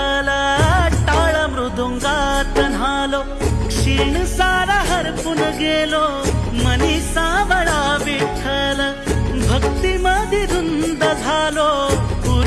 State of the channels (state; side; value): identical; both; correlation 1.00